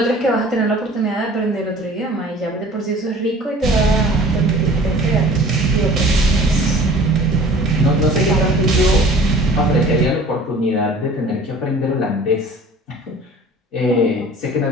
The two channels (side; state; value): both; normal; correlation 0.46